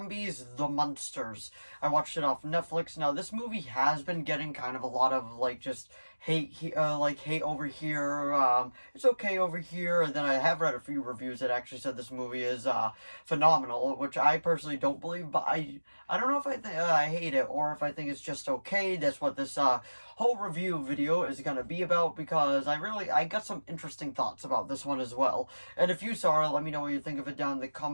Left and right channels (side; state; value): both; inverted; correlation -1.00